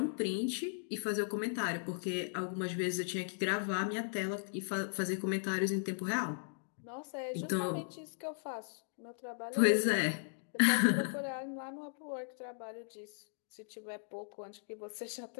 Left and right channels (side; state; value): right; silent; digital silence